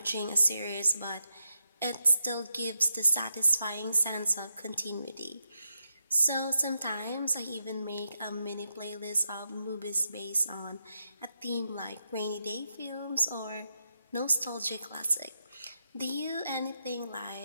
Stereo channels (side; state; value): both; inverted; correlation -0.85